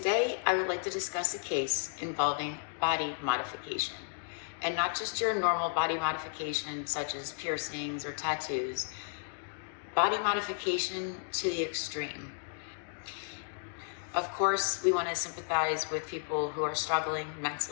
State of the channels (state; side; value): silent; right; digital silence